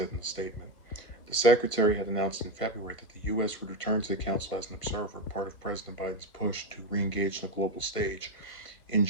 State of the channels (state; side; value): late; right; 1.4 ms